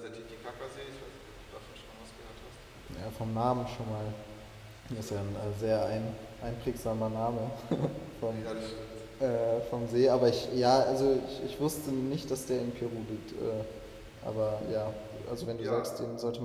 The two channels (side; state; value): both; identical; correlation 1.00